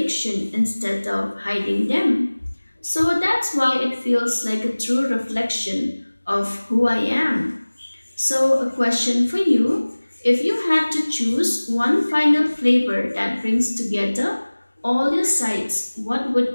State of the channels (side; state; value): both; inverted; correlation -1.00